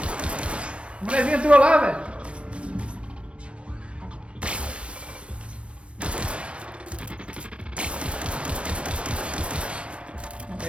O molezinho entrou lá, velho.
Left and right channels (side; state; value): left; late; 0.060 ms